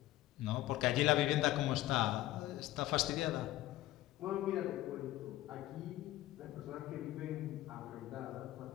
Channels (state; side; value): quieter; right; 15.7 dB